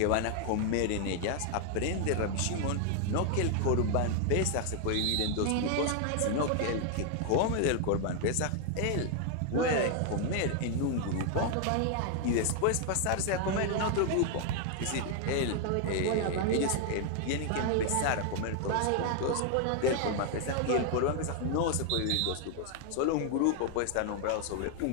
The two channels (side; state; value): both; different; correlation 0.00